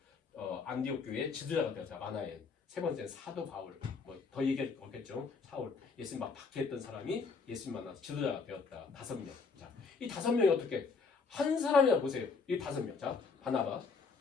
안디옥 교회의 지도자가 되었다. 마나엔. 세 번째는 사도 바울. 뭐 더 얘기할 거 없겠죠. 사울. 예수님 막 박해했던 사람이 예수님 만나서 지도자가 되었다. 5명. 자, 이 5명이 어떻게 한 사람이라 보세요. 이 5명. 자, 바나바,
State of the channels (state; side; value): quieter; right; 4.8 dB